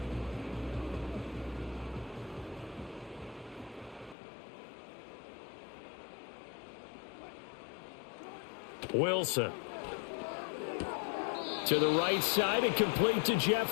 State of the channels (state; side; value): drops out; right; at 4.2 s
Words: Wilson to the right side and complete to